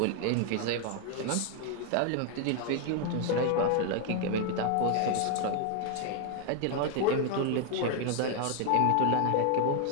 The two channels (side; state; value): both; different; correlation 0.00